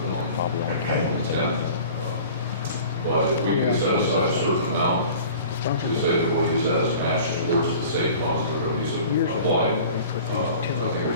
the 10th. But if we can set aside a certain amount to say that we'll use that as a match towards the same funds that are going to be applied, I think it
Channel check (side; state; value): both; inverted; correlation -0.43